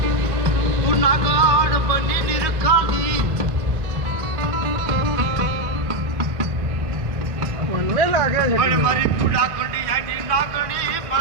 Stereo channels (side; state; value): left; late; 1.4 ms